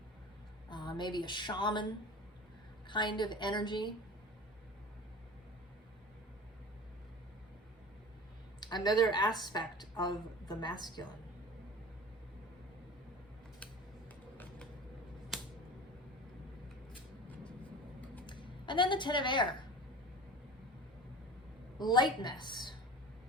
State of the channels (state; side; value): normal; both; correlation 0.37